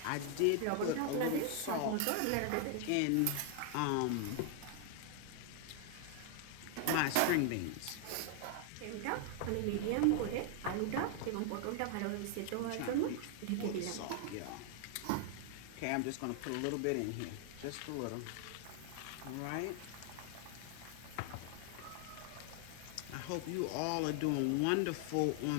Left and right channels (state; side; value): different; both; correlation 0.00